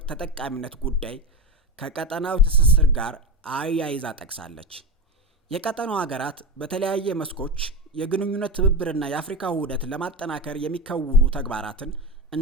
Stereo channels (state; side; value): normal; both; correlation 0.18